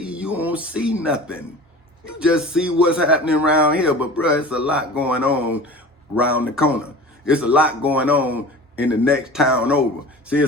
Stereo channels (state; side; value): normal; both; correlation 0.38